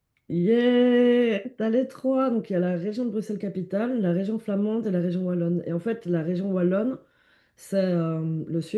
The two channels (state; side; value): identical; both; correlation 1.00